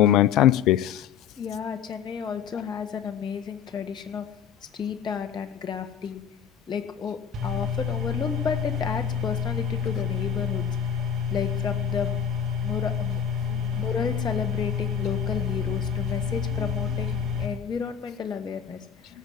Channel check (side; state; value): right; quieter; 7.7 dB